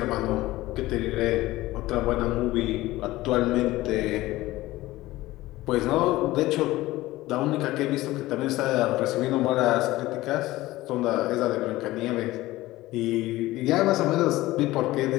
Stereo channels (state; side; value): quieter; right; 17.7 dB